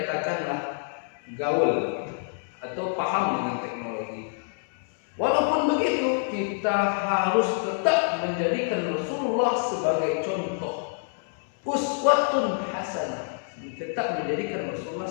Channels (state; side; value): silent; right; digital silence